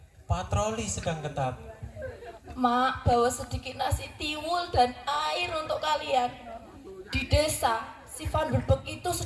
Patroli sedang ketat. Mak, bawa sedikit nasi tiwul dan air untuk kalian. Di desa, si Van der Beek itu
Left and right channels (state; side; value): identical; both; correlation 1.00